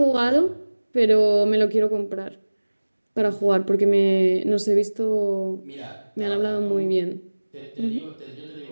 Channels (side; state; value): both; inverted; correlation -1.00